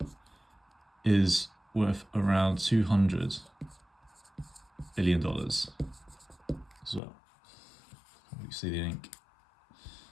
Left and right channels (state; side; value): drops out; right; at 7.0 s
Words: is worth around $200 billion as well. You see the ink.